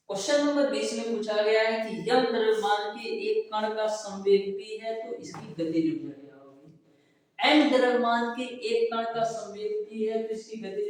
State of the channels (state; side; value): identical; both; correlation 1.00